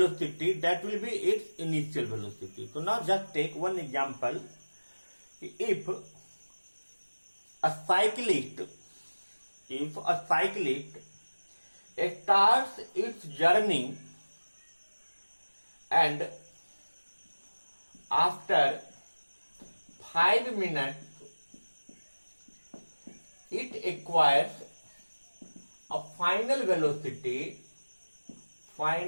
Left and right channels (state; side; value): inverted; both; correlation -1.00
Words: that will be its initial velocity. So now just take one example. If a cyclist starts its journey and after 5 minutes it acquires a final velocity